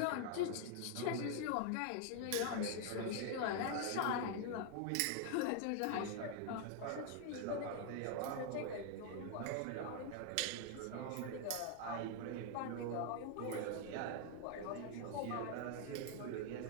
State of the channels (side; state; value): both; different; correlation 0.00